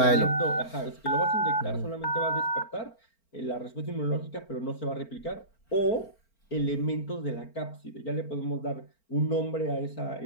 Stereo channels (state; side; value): late; right; 4.4 ms